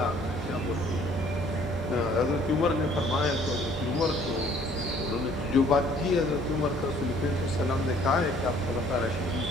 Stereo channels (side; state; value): both; normal; correlation 0.58